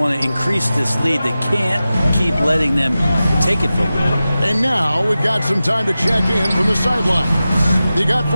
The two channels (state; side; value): inverted; both; correlation -0.94